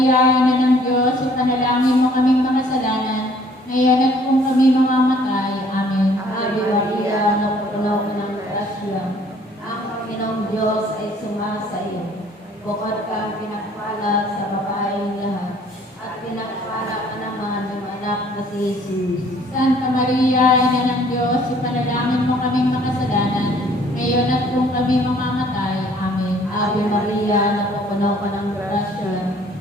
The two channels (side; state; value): both; normal; correlation 0.58